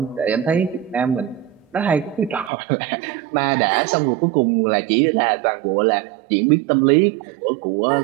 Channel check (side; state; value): left; drops out; at 2.5 s